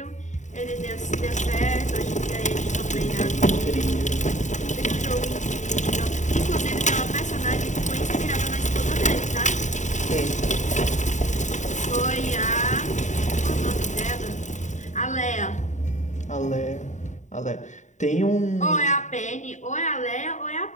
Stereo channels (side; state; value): right; late; 0.35 ms